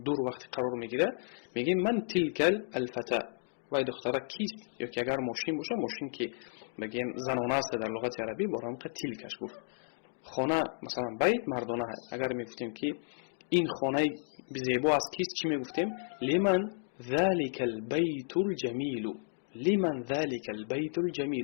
دور وقت قرار میگیره، میگه من تلك الفتاة، وای دختره کیست؟ یا که اگر ماشین باشه، ماشین که بگیم زنانه است در لغت عربی، برام که تلکش گفت. خانه مثلا بیت مردانه های، اگر میگفتیم که این خانه زیبا از کیست، چی میگفتیم؟ لمن ذلك البيت الجميل، لمن ذلك البيت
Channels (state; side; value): silent; right; digital silence